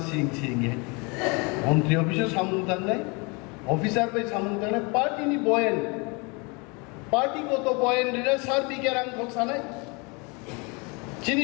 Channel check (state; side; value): quieter; right; 29.8 dB